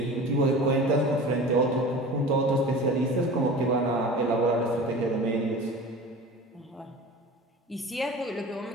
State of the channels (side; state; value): both; normal; correlation 0.37